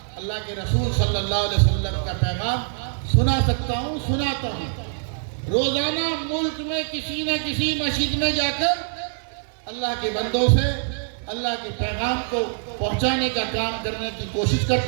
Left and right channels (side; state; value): left; silent; digital silence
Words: کے رسول صلی اللہ علیہ وسلم کا پیغام سنا سکتا ہوں، سناتا ہوں۔ روزانہ ملک میں کسی نہ کسی مسجد میں جا کر اللہ کے بندوں سے اللہ کے پیغام کو پہنچانے کا کام کرنے کی کوشش